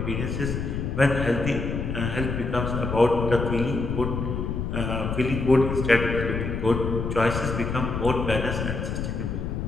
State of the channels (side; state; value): left; noise; rumble, 3 dB below the sound